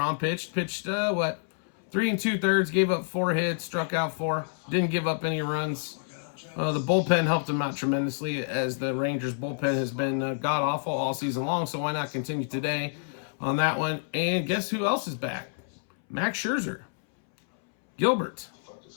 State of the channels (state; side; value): silent; right; 59 dB below the other